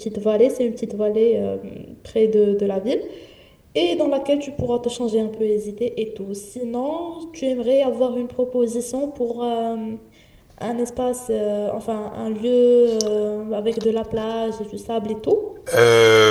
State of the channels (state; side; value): identical; both; correlation 1.00